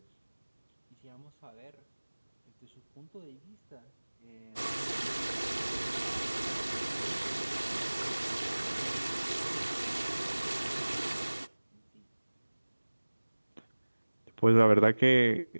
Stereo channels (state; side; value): inverted; both; correlation -1.00